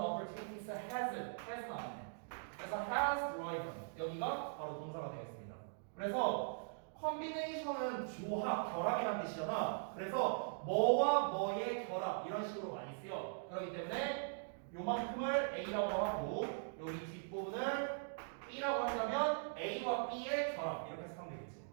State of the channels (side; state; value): left; silent; digital silence